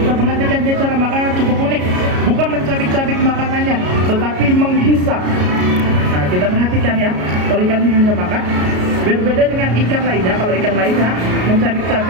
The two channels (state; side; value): late; left; 33 ms